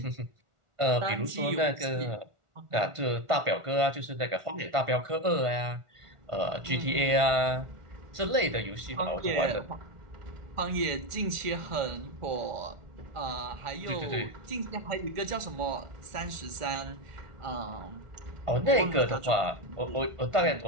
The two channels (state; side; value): late; left; 1.4 ms